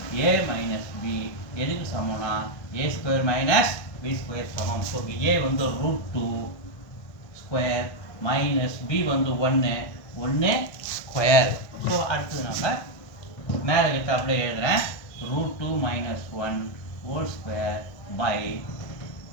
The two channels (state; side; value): late; right; 1.6 ms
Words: a minus b எதுக்கு சமம்னா a square minus b square சமம். So a வந்து root 2 square minus b வந்து 1 square. So அடுத்து நம்ம மேலே கிட்ட அப்படியே எழுதுறேன் root 2 minus 1 whole square by